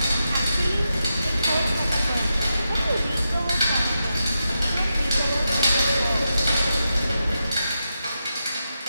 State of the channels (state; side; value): inverted; both; correlation -0.87